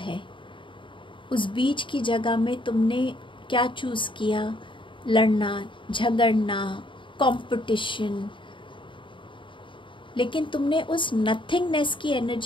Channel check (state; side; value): late; right; 0.24 ms